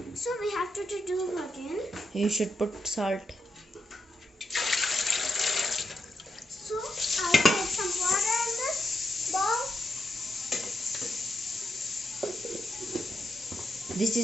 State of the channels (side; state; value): both; normal; correlation 0.83